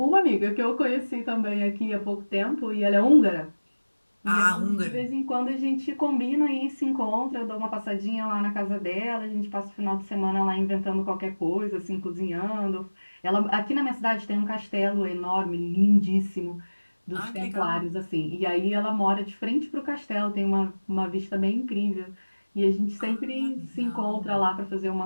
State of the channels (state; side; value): inverted; both; correlation -1.00